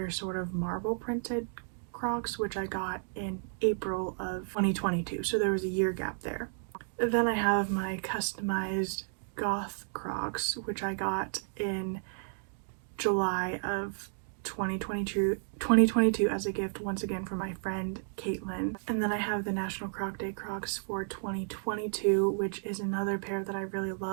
sort of marble printed Crocs, which I got in April of 2022, so there was a year gap there. Then I have my customized goth Crocs, which I got in July of 2022 as a gift once again from my friend Caitlin. And then I have the National Croc Day Crocs for 2022, which is another pair that I really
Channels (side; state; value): left; silent; digital silence